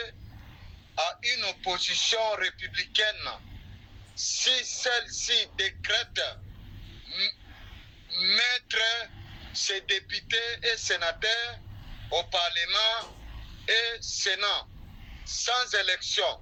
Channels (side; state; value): both; identical; correlation 1.00